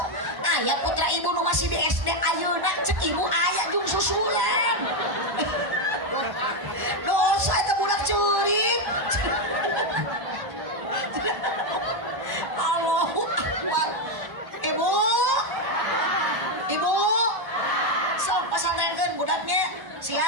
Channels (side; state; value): left; late; 1.1 ms